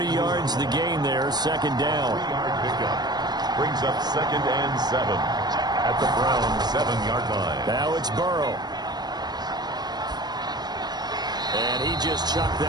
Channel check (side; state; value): left; late; 0.20 ms